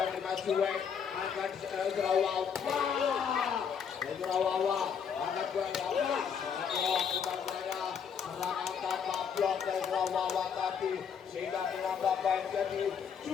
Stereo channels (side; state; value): right; quieter; 7.1 dB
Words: 5 Juek akan Serawawa akan Serawawa serangan tanpa blok dari Serawawa tadi sehingga menambah poin jadi